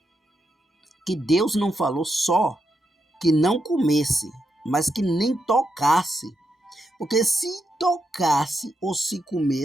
que Deus não falou só que não comesse, mas que nem tocasse. Porque se tocasse ou se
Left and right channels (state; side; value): normal; both; correlation 0.83